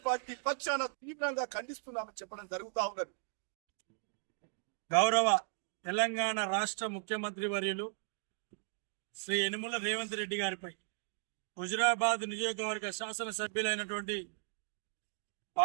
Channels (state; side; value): silent; left; digital silence